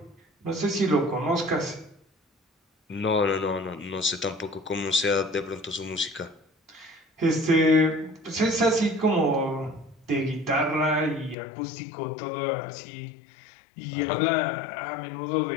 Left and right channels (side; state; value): right; drops out; at 11.4 s